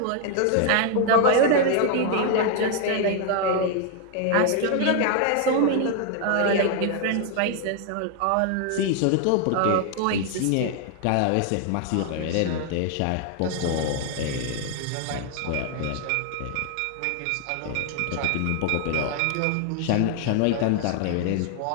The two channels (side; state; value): both; different; correlation 0.00